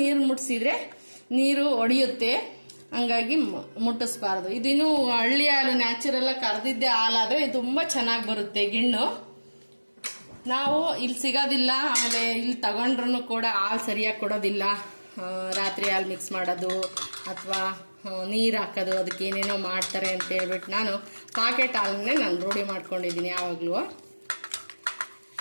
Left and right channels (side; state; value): both; inverted; correlation -1.00